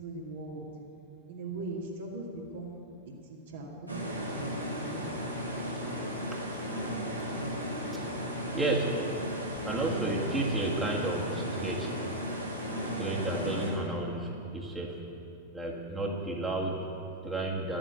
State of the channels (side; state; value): both; normal; correlation -0.05